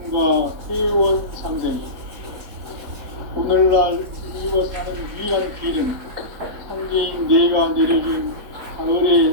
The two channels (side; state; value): left; late; 4.4 ms